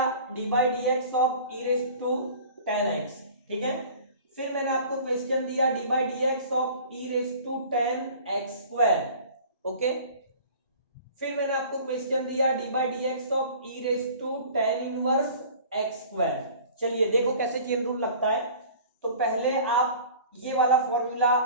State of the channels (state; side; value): inverted; both; correlation -0.44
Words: d by d x of e⁻tan x, ठीक है। फिर मैंने आपको क्वेश्चन दिया d by d x of e⁻tan x², okay. फिर मैंने आपको क्वेश्चन दिया d by d x of e⁻tan 1x²। चलिए देखो कैसे चेन रूल लगता है। तो पहले आप ये वाला फॉर्मूला